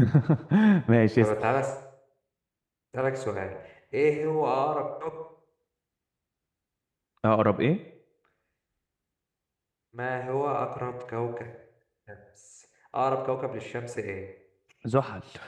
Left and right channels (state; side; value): identical; both; correlation 1.00